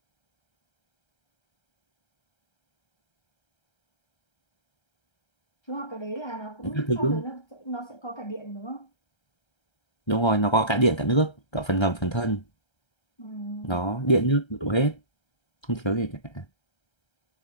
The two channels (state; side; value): late; right; 1.3 ms